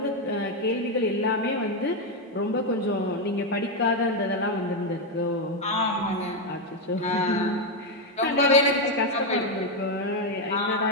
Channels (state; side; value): normal; both; correlation 0.05